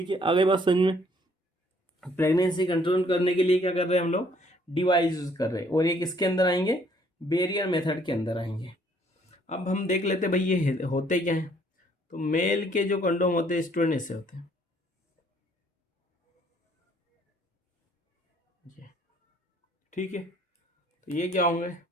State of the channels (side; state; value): both; normal; correlation 0.63